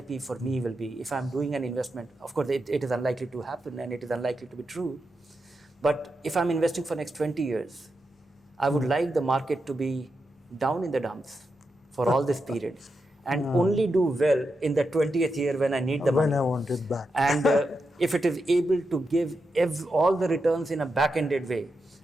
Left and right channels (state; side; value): normal; both; correlation 0.87